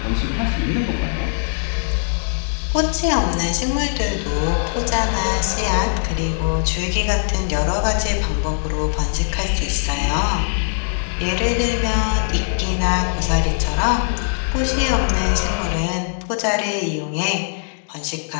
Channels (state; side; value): silent; right; digital silence